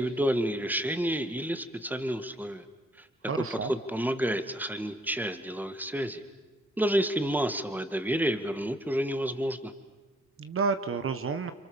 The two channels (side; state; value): both; normal; correlation 0.63